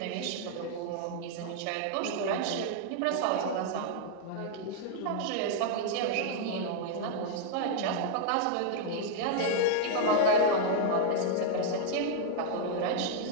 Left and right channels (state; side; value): different; both; correlation -0.01